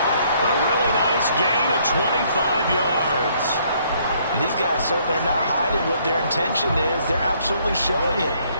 A really nice gain of 25 yards. And these guys certainly are not hiding what their intention is. They're absolutely showing it.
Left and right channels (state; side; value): inverted; both; correlation -0.66